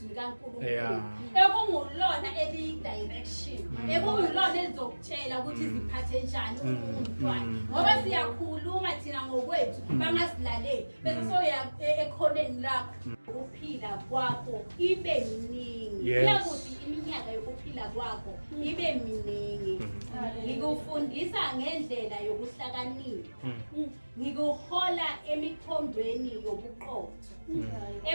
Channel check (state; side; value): inverted; both; correlation -1.00